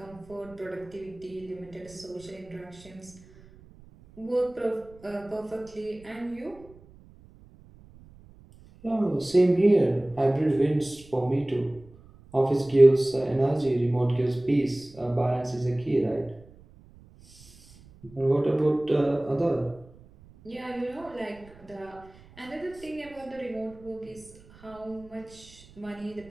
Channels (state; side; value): noise; right; rumble, 24 dB below the sound